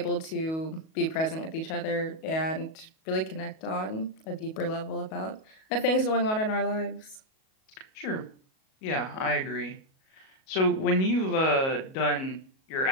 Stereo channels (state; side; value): late; right; 37 ms